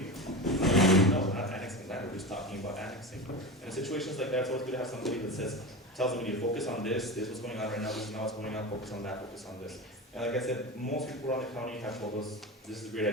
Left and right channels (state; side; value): normal; both; correlation 0.25